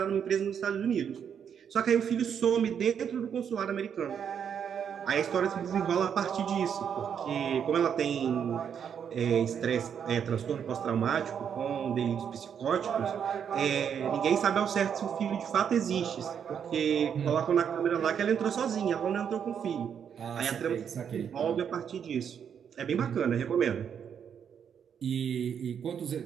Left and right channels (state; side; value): quieter; left; 7.9 dB